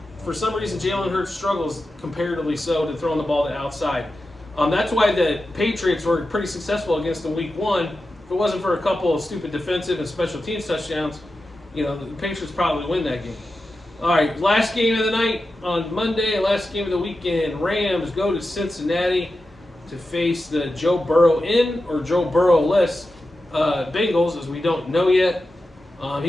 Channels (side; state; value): both; normal; correlation 0.91